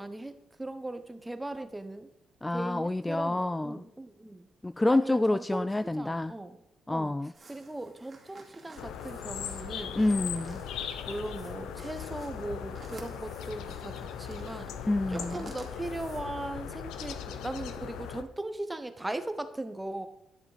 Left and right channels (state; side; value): normal; both; correlation 0.93